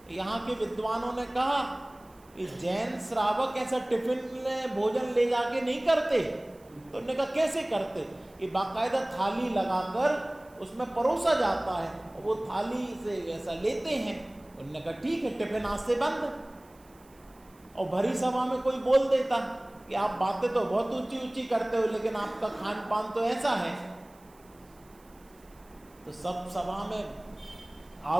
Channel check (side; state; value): right; noise; hiss, 29 dB below the sound